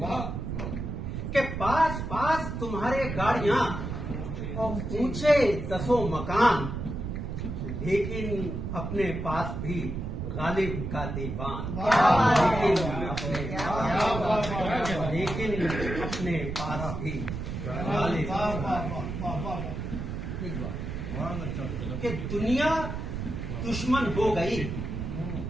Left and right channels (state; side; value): noise; right; rumble, 5 dB below the sound